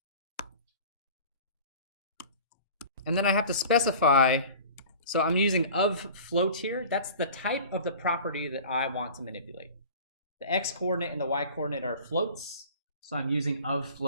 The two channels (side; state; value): both; inverted; correlation -0.41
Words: And then I have to specify, so I'm using of float here. That's the type of the property that I want to manipulate. The X coordinate and the Y coordinate are floats. So I'm using of